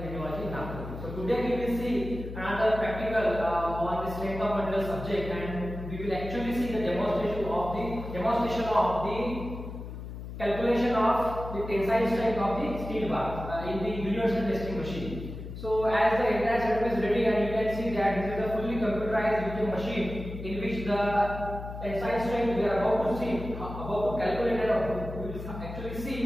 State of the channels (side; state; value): left; noise; hum, 9 dB below the sound